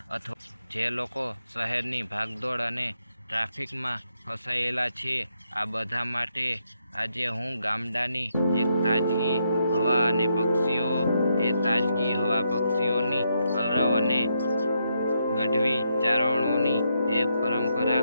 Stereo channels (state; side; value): inverted; both; correlation -0.80